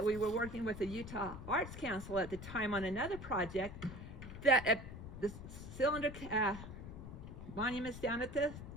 we were working with the Utah Arts Council at the time on another project, that the cylinder monuments down at the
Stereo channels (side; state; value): left; noise; rumble, 10 dB below the sound